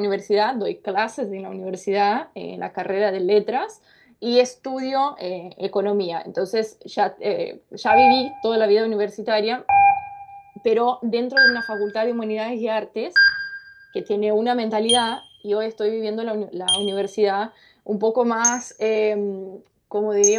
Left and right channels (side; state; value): both; identical; correlation 1.00